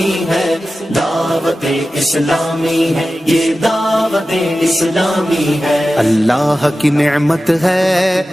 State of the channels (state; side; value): normal; both; correlation 0.94